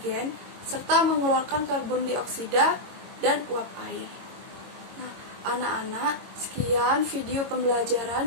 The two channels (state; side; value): late; left; 22 ms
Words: serta mengeluarkan karbon dioksida dan uap air. Nah, anak-anak, sekian video